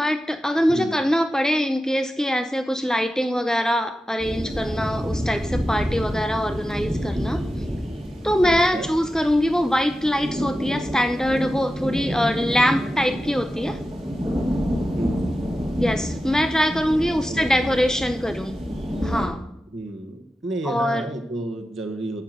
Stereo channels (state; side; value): normal; both; correlation 0.92